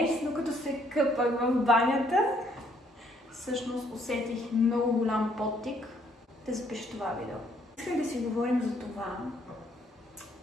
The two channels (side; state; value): both; normal; correlation 0.67